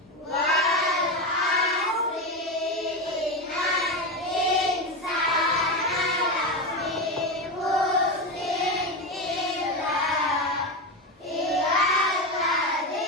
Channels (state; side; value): normal; both; correlation 0.16